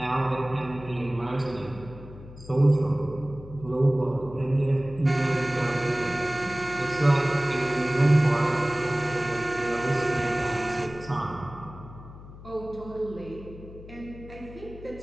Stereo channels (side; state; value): left; noise; hum, 16 dB below the sound